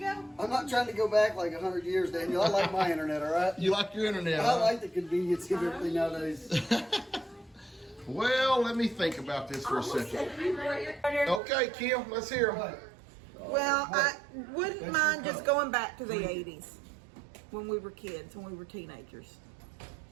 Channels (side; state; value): left; drops out; at 11.4 s